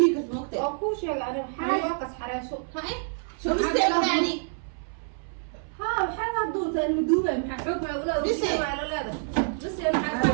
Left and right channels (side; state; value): left; silent; 59 dB below the other